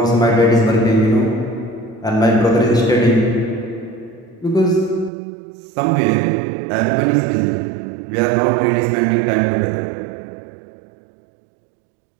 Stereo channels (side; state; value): left; drops out; at 5.1 s